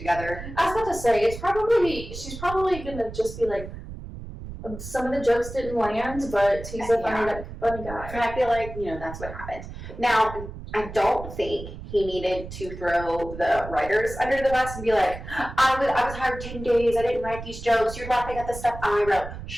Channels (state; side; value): noise; right; rumble, 11 dB below the sound